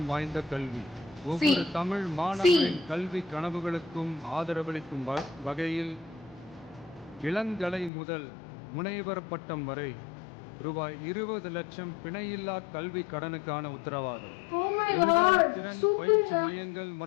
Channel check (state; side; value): drops out; right; at 7.9 s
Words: வாய்ந்த கல்வி. ஒவ்வொரு தமிழ் மாணவரின் கல்வி கனவுகளுக்கும் ஆதரவளிக்கும் வகையில் இளங்கலை முதல் முனைவர் பட்டம் வரை ரூபாய் 20 லட்சம் பிணையில்லா கல்வி கடனுக்கான உத்தரவாதம். திறன் பயிற்சி மையங்கள்